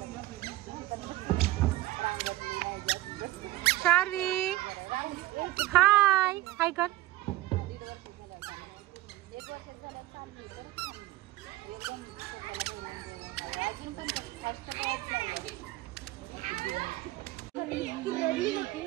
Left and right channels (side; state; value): left; quieter; 17.2 dB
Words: शार्वी हाय हाय कर.